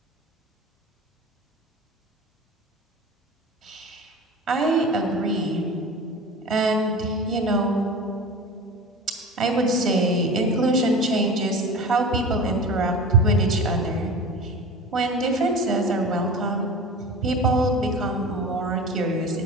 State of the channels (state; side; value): normal; both; correlation 0.34